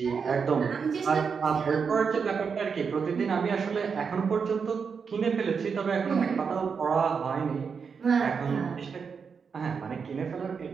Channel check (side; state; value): left; quieter; 5.9 dB